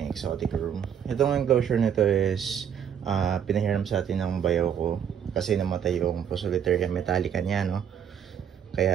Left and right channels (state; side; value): quieter; left; 8.4 dB